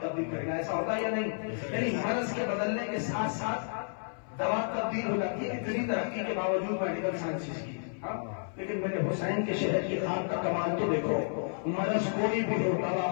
تبدیل کرے گا. ایسا ہوتا ہے یا نہیں؟ یعنی مرض کے بدلنے کے ساتھ ساتھ دوا تبدیل ہو جاتی ہے. اتنی ترقی کے باوجود میڈیکل سائنسز کی. لیکن میرے حسین کے شہر کی خاک کا کمال تو دیکھو. مرض کوئی بھی ہو دوا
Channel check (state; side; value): silent; right; 57 dB below the other